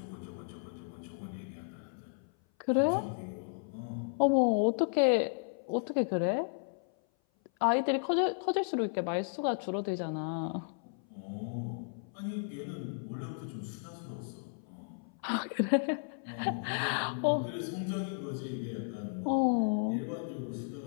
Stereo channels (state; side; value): silent; right; 55 dB below the other